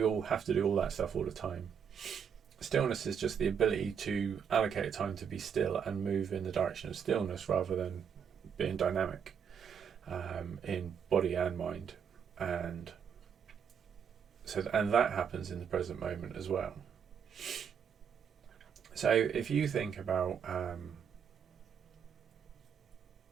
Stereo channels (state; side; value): quieter; left; 7.4 dB